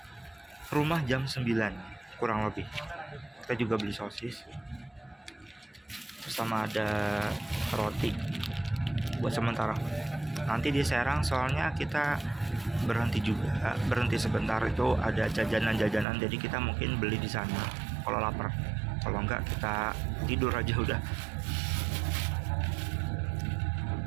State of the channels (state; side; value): drops out; left; at 16.1 s